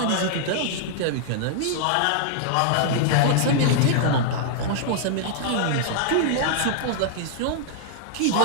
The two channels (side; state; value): both; different; correlation -0.01